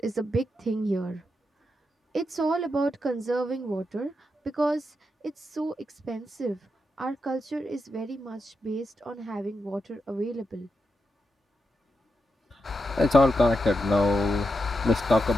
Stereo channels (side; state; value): both; normal; correlation 0.85